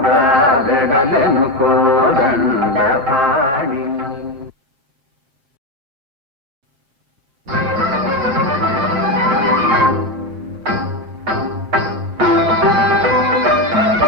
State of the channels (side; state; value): left; late; 7.6 ms